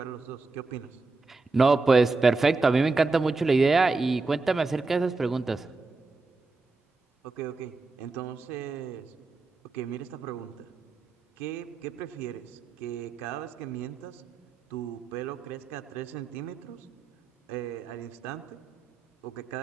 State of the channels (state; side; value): quieter; left; 3.8 dB